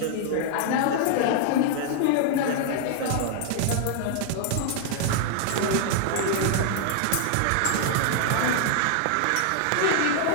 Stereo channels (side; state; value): both; different; correlation 0.00